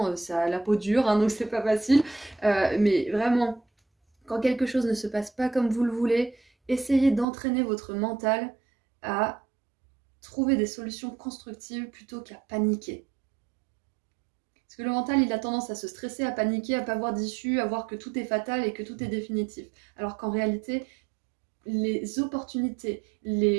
ça a la peau dure, hein, donc c'est pas facile. Mais vraiment, quand quelque chose ne se passe pas comme vous le voulez, essayez d'entraîner votre mental à trouver des solutions constructives plutôt qu'à paniquer. Parce que le mental, il a tendance à se stresser, à paniquer, à pas voir d'issue, à voir que tout est fatal et que tout est définitif. Alors qu'en réalité, les opportunités,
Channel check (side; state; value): left; drops out; at 7.2 s